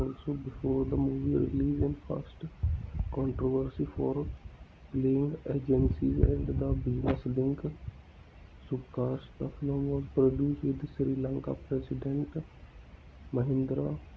before the movie release and first controversy for playing agencies and the business link. Subcast. The film was produced with Sri Lanka President Mahindra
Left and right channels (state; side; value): identical; both; correlation 1.00